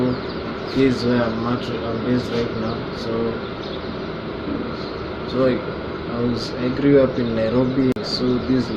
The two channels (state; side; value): identical; both; correlation 1.00